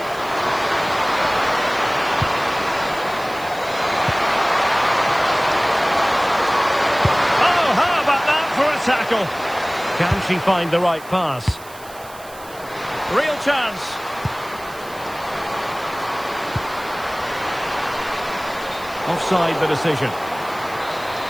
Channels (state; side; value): noise; right; hiss, 20 dB below the sound